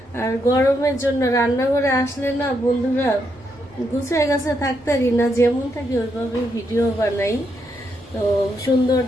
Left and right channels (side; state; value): both; normal; correlation 0.79